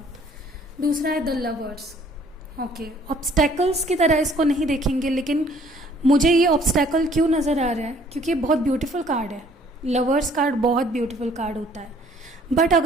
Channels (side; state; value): both; normal; correlation 0.59